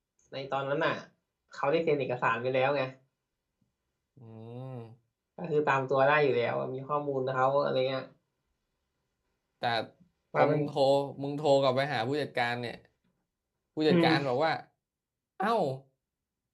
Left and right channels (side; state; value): both; identical; correlation 1.00